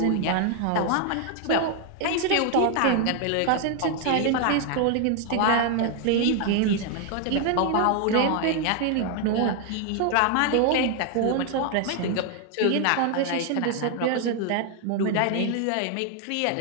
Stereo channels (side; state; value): both; different; correlation 0.00